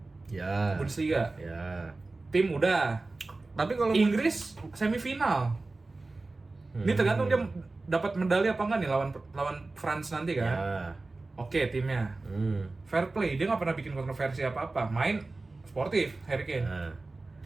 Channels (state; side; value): quieter; left; 3.3 dB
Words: Ya. Bundesliga. Ya. Tim udah. Tapi kalau Inggris semifinal. Ini tergantung dia dapat medali apa enggak nih lawan France nanti kan. Ya. Oke, timnya. Fair play, dia nggak pernah bikin kontroversi apa-apa. Main sportif, Harry Kane. Nah.